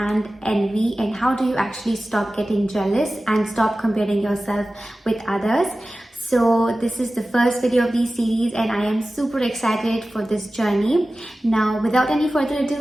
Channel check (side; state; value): both; normal; correlation 0.96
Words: envy and how do you actually stop getting jealous and stop comparing yourself with others. So this is the first video of this series and I am super excited for this journey. Now without any further ado,